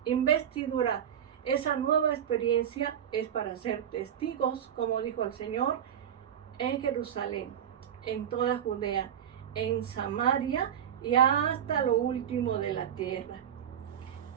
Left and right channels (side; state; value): left; quieter; 9.3 dB